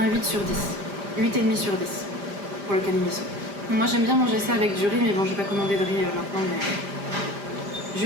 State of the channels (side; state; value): left; late; 5.0 ms